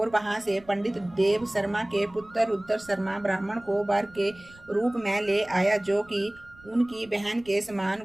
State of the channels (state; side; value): noise; right; rumble, 25 dB below the sound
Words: वहां से पंडित देव शर्मा के पुत्र रुद्र शर्मा ब्राह्मण को वर के रूप में ले आया, जो कि उनकी बहन के